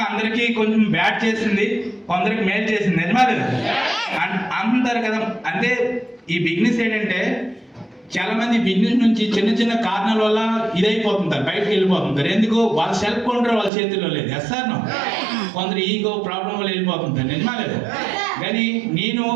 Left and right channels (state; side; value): drops out; left; at 13.7 s